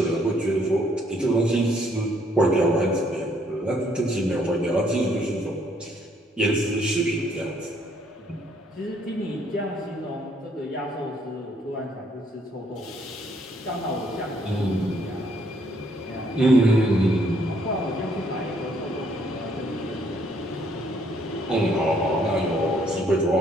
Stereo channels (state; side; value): normal; both; correlation 0.67